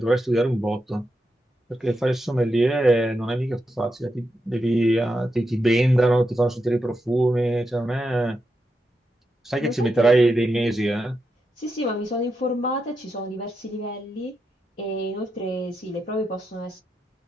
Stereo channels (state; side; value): normal; both; correlation 0.86